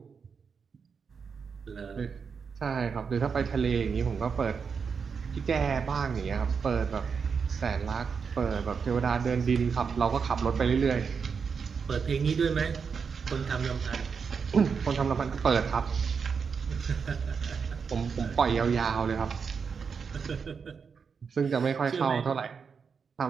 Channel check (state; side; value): quieter; left; 5.9 dB